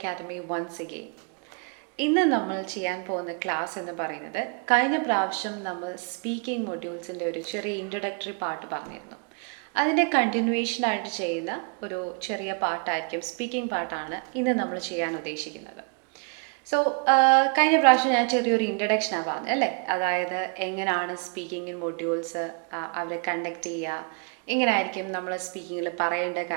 once again. ഇന്ന് നമ്മൾ ചെയ്യാൻ പോകുന്ന ക്ലാസ് എന്ന് പറയുന്നത്, കഴിഞ്ഞ പ്രാവശ്യം നമ്മൾ സ്പീക്കിംഗ് മൊഡ്യൂൾസിൻ്റെ ഒരു ചെറിയ ഇൻട്രൊഡക്ടറി പാർട്ട് പറഞ്ഞിരുന്നു. അതിൻ്റെ കണ്ടിന്യൂവേഷനായിട്ട് ചെയ്യുന്ന ഒരു ചെറിയ പാർട്ടായിരിക്കും, സ്പീക്കിംഗ് പാർട്ടാണ് ഇന്ന് നമ്മൾ ചെയ്യാൻ ഉദ്ദേശിക്കുന്നത്. സോ കഴിഞ്ഞ പ്രാവശ്യം ഞാൻ ചെറിയൊരു ഇൻട്രഡക്ഷനാണ് പറഞ്ഞത് അല്ലേ, അതായത് എങ്ങനെയാണ് സ്പീക്കിംഗ് മൊഡ്യൂൾസ് അവരെ കണ്ടക്ട് ചെയ്യുക, എങ്ങനെയായിരിക്കും നമ്മൾ സ്പീക്കിങ്ങിൽ പറയേണ്ട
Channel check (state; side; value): quieter; left; 38.7 dB